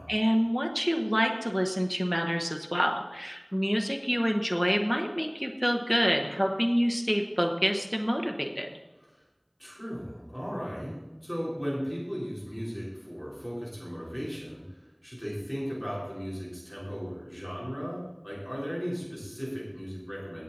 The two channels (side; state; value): both; identical; correlation 1.00